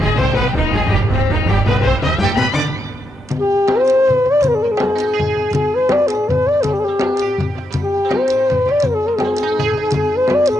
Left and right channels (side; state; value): both; normal; correlation 0.83